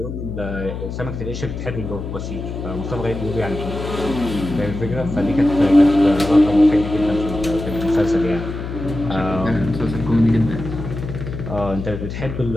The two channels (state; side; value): noise; left; hum, 7 dB below the sound